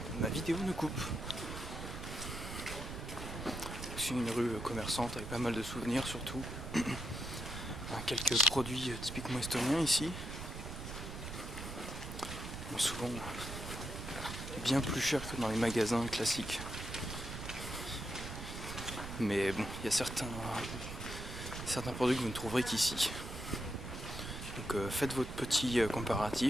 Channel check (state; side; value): noise; right; rumble, 8 dB below the sound